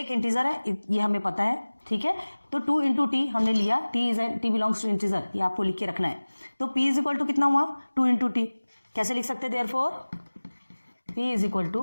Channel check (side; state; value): both; inverted; correlation -1.00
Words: इंटीजर है, ये हमें पता है, ठीक है। तो 2 इंटू टी हमने लिया, टी बिलोंग्स टू इंटीजर, ये आपको लिख के रखना है। तो p इज इक्वल टू कितना हुआ, 2 इंटू टी, कैसे लिख सकते हैं, therefore p is equal to